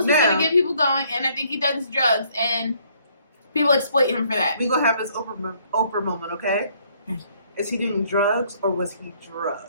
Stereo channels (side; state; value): both; inverted; correlation -0.64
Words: what's going to get people going, and I think he does drugs, and people exploit him for that. We're going to have this Oprah moment, okay? Is he doing drugs, or was he